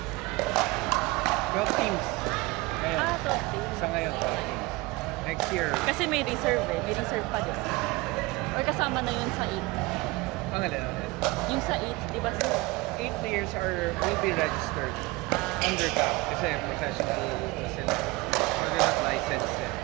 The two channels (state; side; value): quieter; left; 22.5 dB